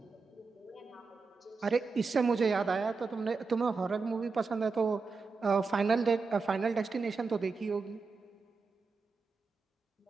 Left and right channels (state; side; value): quieter; left; 4.5 dB